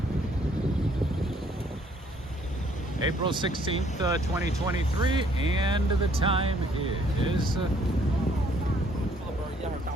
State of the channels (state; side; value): normal; both; correlation 0.64